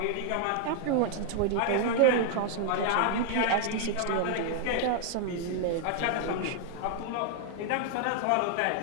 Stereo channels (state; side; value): different; both; correlation 0.00